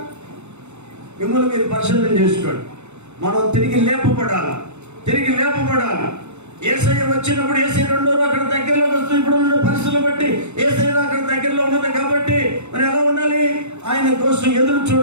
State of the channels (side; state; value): left; late; 0.82 ms